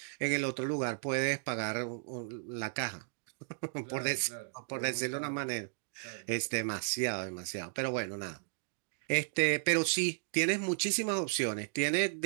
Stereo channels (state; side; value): silent; left; digital silence